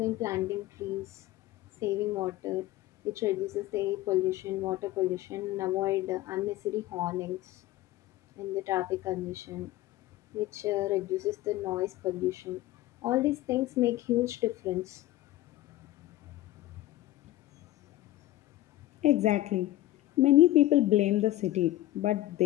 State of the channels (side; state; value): right; quieter; 15.8 dB